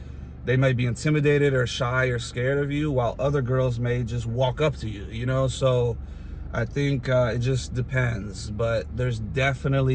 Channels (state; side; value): identical; both; correlation 1.00